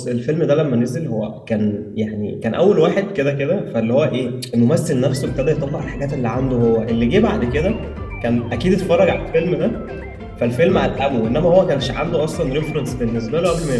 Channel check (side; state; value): both; identical; correlation 1.00